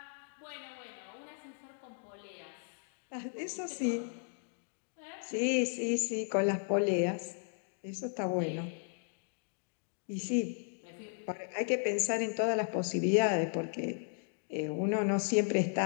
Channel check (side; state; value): right; silent; 54 dB below the other